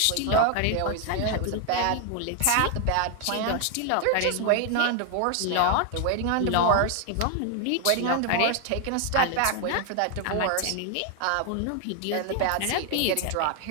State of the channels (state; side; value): different; both; correlation 0.00